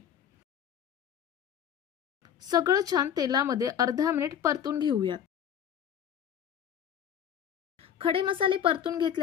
सगळं छान तेलामध्ये अर्धा मिनिट परतून घेऊयात। खडे मसाले परतून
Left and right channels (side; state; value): right; quieter; 9.1 dB